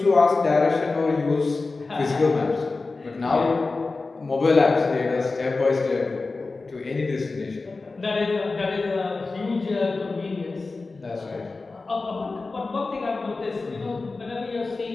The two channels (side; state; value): right; quieter; 3.7 dB